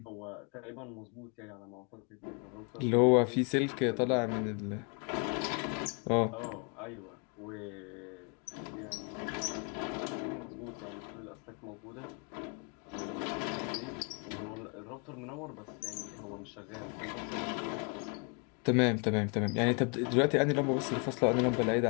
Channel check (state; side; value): quieter; right; 35.3 dB